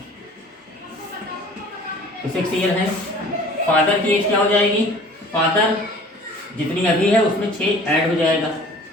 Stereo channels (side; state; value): both; normal; correlation 0.48